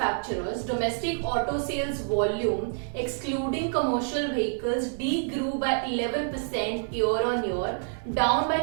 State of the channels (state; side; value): silent; left; digital silence